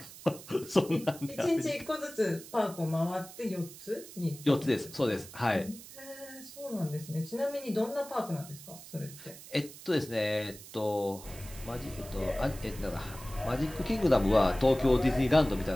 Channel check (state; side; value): noise; right; hiss, 16 dB below the sound